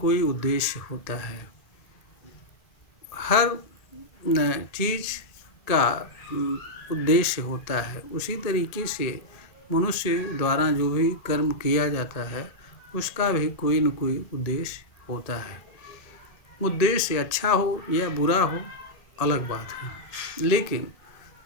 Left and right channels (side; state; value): right; late; 2.3 ms